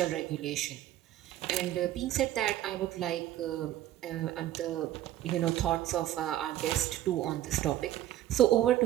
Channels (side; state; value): left; quieter; 13.2 dB